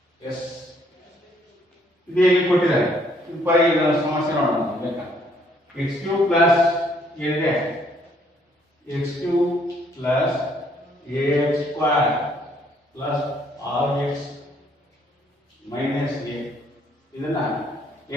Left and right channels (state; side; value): normal; both; correlation 0.66